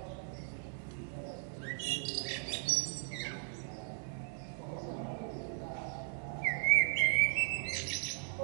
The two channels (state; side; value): silent; left; 53 dB below the other